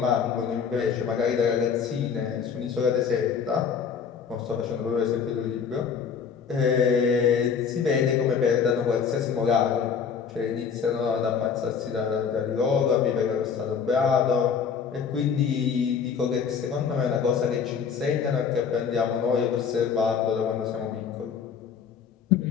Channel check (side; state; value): right; quieter; 6.6 dB